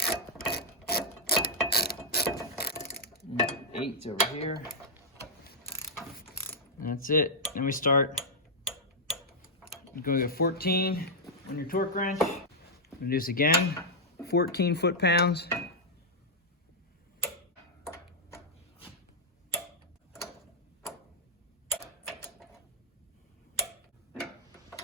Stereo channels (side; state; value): both; normal; correlation -0.07